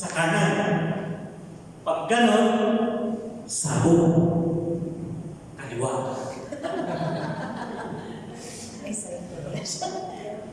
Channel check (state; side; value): identical; both; correlation 1.00